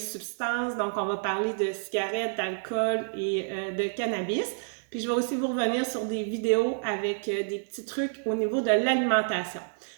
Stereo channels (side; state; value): left; silent; digital silence